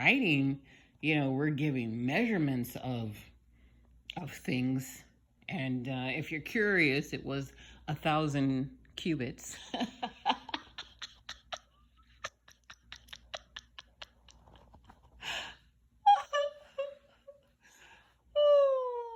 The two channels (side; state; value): both; identical; correlation 1.00